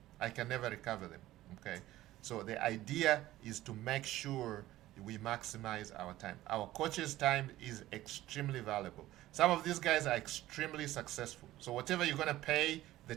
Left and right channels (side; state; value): left; quieter; 15.5 dB